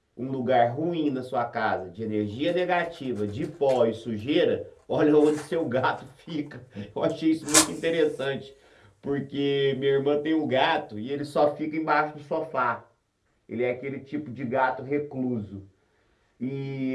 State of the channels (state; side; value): identical; both; correlation 1.00